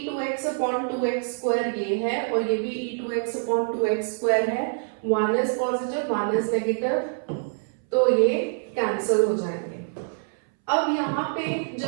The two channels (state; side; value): silent; left; 61 dB below the other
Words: अपॉन 2x स्क्वायर ये है और ये भी e2x अपॉन 2x स्क्वायर है, 1 इज पॉजिटिव 1 इज नेगेटिव, तो ये कैंसिल हो जाएंगे। अब यहाँ पे